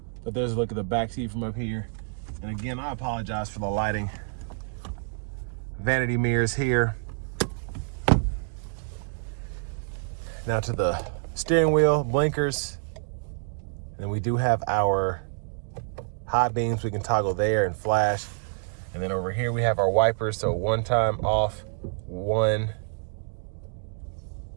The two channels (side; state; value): left; silent; digital silence